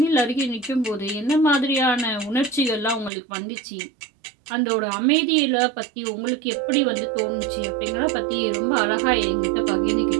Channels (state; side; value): drops out; left; at 3.1 s